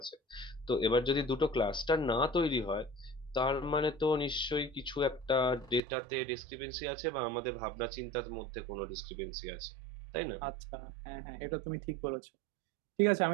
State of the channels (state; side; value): drops out; left; at 5.8 s